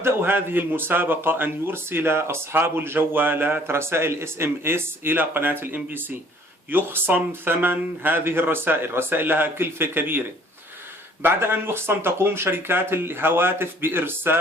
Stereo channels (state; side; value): normal; both; correlation 0.57